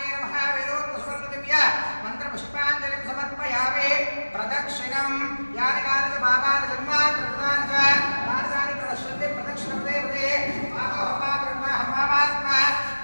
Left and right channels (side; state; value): both; inverted; correlation -1.00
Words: नमः वेदोक्तस्वर्णदिव्य मन्त्रपुष्पाञ्जलिं समर्पयामि प्रदक्षिणं यानि कानि पापानि जन्मानि कृतानि च तानि प्रणश्यन्ति प्रदक्षिणपदे पदे पापात्मा